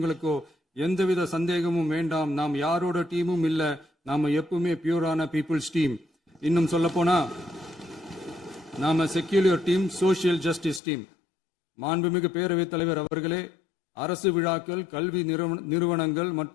எந்தவித சந்தேகமும் வேண்டாம். நாம் யாரோட டீமும் இல்ல. நாம எப்பவுமே பியூரான பீப்புள்ஸ் டீம். இன்னும் சொல்ல போனா நாம secular team, social justice team. மாண்புமிகு பேரவைத் தலைவர் அவர்களே, அரசு விழாக்கள், கல்வி நிறுவனங்கள்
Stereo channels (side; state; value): right; drops out; at 10.8 s